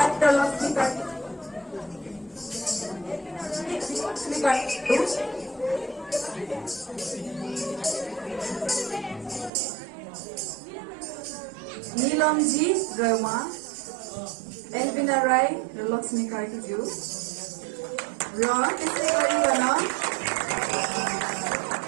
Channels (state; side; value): drops out; left; at 9.5 s